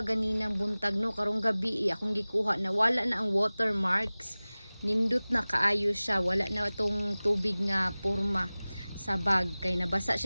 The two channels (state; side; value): inverted; both; correlation -0.99